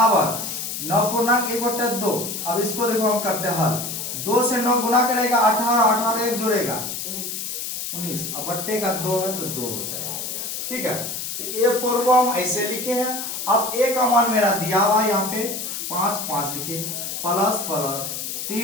9.1/2। अब इसको देखो हम करते हैं हल, 2 से 9 गुना करेगा 18, 18 एक जोड़ेगा 19, अब बट्टे का 2 है तो 2 हो जाएगा, ठीक है। तो a4 को हम ऐसे लिखे हैं। अब a का मान मेरा दिया हुआ है यहाँ पे 5 लिखे, प्लस प्लस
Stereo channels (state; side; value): noise; left; hiss, 5 dB below the sound